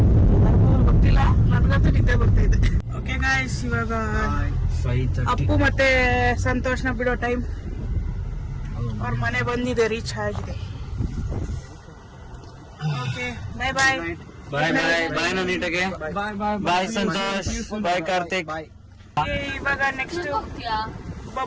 ಗೊತ್ತಿಲ್ಲ, ನನ್ಗಂತೂ ನಿದ್ದೆ ಬರ್ತಾ ಇದೆ. ಓಕೆ ಗಾಯ್ಸ್, ಇವಾಗ 5:30. ಅಪ್ಪು ಮತ್ತೆ ಸಂತೋಷ್ನ ಬಿಡೋ ಟೈಮ್. ಅವ್ರ ಮನೆ ಬಂದಿದೆ, ರೀಚ್ ಆಗಿದೆ. ಓಕೆ, ಬಾಯ್ ಬಾಯ್. ಬಾಯ್ ಬಾಯ್ ಬಾಯ್ ನೀಟಾಗೆ. ಬಾಯ್ ಸಂತೋಷ್, ಬಾಯ್ ಕಾರ್ತಿಕ್. ಇವಾಗ ನೆಕ್ಸ್ಟ್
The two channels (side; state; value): both; identical; correlation 1.00